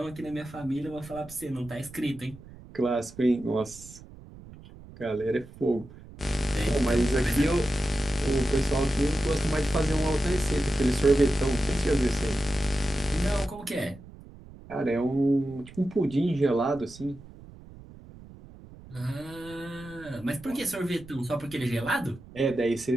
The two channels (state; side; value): noise; right; rumble, 19 dB below the sound